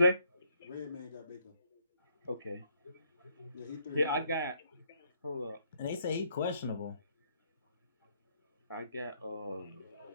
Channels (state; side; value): inverted; both; correlation -0.70